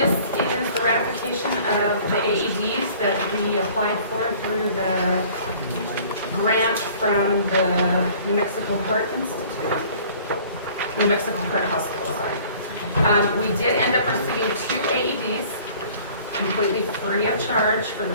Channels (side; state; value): both; inverted; correlation -0.51